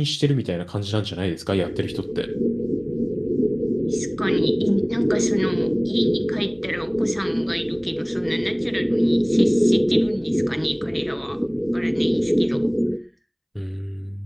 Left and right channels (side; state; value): both; identical; correlation 1.00